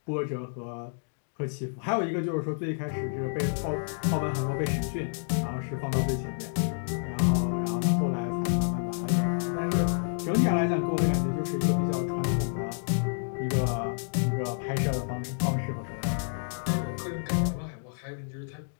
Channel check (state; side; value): silent; right; digital silence